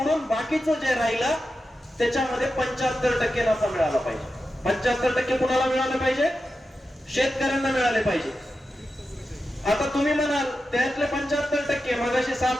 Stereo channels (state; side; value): normal; both; correlation 0.91